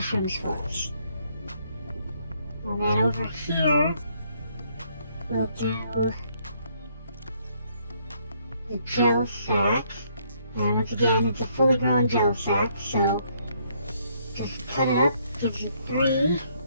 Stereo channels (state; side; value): inverted; both; correlation -0.69